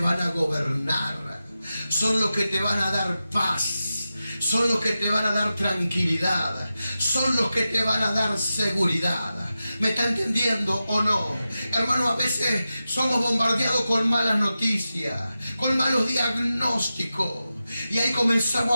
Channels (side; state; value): both; inverted; correlation -0.92